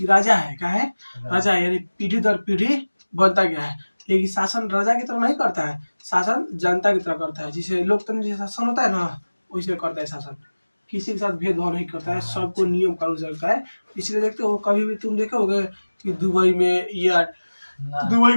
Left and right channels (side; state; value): both; inverted; correlation -1.00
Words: राजा है, क्या है, राजा है, यानी पीढ़ी दर पीढ़ी बनता गया है। लेकिन शासन राजा की तरह नहीं करता है, शासन जनता की तरह करता है। जिसे लोकतंत्र जैसा शासन होता है ना, वैसे करता है शासन, किसी के साथ भेदभाव नहीं करता है, सबको नियम कानून से रखता है। इसलिए देखते हो कभी भी तुम देखोगे कि दुबई में या दुबई